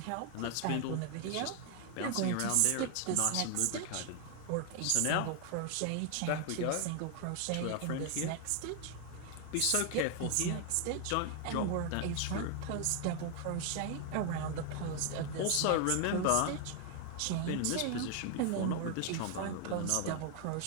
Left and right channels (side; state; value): both; different; correlation 0.00